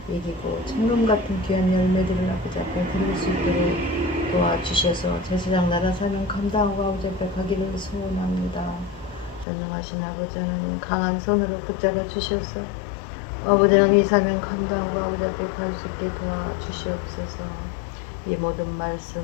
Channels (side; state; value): right; drops out; at 9.5 s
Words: 이기고 천금 같은 귀한 열매들을 아버지 앞에 드릴 수 있도록 도와주셔서 제사장 나라 사명 감당하고 아버지 앞에 가기를 소원합니다. 전능하신 아버지 하나님, 강한 손으로 붙잡아 주셔서 아버지 하나님 이 사명 감당하고 아버지 앞에 갈 수 있게 도와주시옵소서. 이 모든 말씀